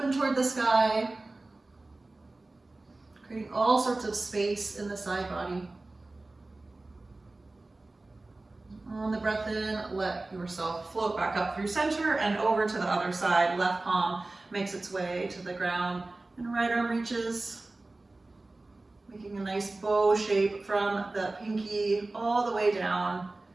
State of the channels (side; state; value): left; quieter; 3.1 dB